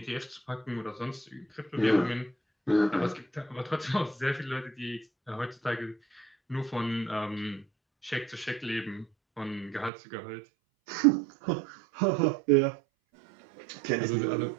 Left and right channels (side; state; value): left; drops out; at 9.9 s